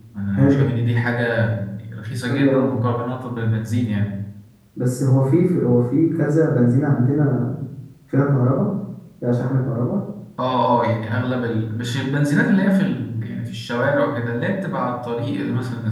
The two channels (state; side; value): identical; both; correlation 1.00